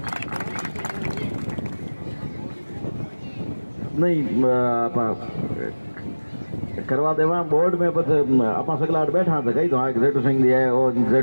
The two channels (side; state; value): both; inverted; correlation -1.00